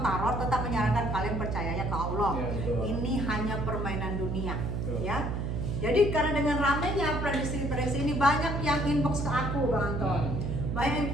Tarot tetap menyarankan kalian percayanya ke Allah. Ya, ini hanya permainan dunia, ya. Jadi karena dengan ramainya prediksi ini banyak yang inbox ke aku, Bang Anton. Banyak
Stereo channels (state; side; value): noise; right; hum, 2 dB below the sound